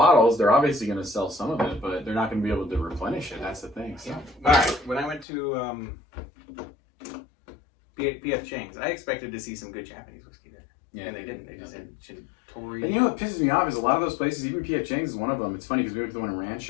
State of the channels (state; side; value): drops out; right; at 5.2 s